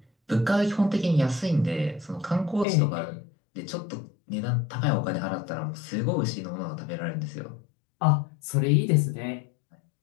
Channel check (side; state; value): right; drops out; at 2.7 s